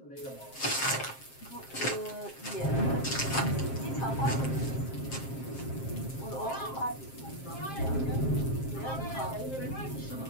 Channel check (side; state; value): right; late; 7.5 ms